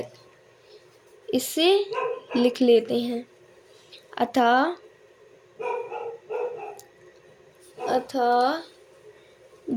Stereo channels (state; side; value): identical; both; correlation 1.00